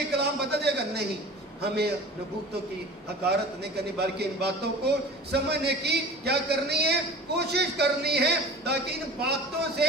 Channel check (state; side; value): normal; both; correlation 0.38